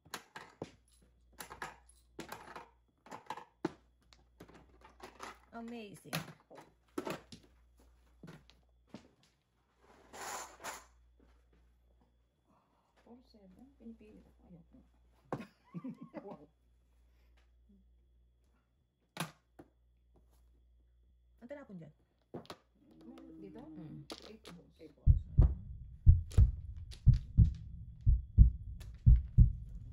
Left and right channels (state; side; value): identical; both; correlation 1.00